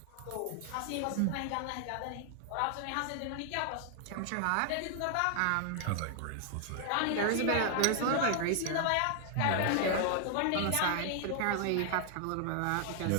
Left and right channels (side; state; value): both; different; correlation 0.00